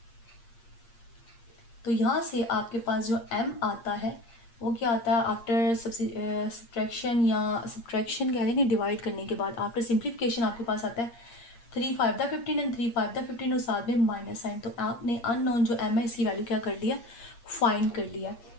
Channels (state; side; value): late; right; 8.6 ms